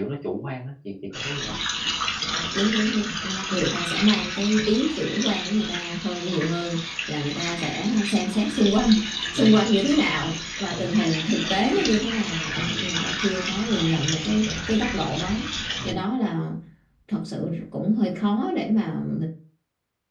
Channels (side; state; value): both; identical; correlation 1.00